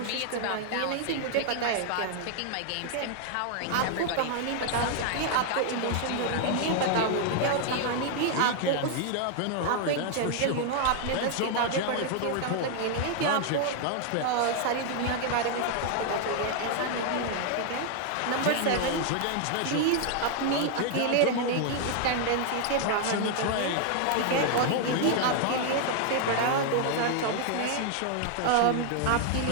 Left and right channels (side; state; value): both; different; correlation 0.00